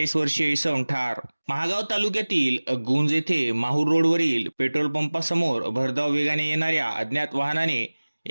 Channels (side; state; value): both; inverted; correlation -1.00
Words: वर्षीय इसम ठार। महागाव तालुक्यातील गुंज येथे माहूर रोडवरील पेट्रोल पंपासमोर भरधाव वेगाने येणाऱ्या अज्ञात वाहनाने